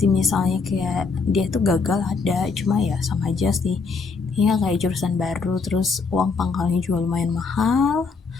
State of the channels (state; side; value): quieter; right; 4.7 dB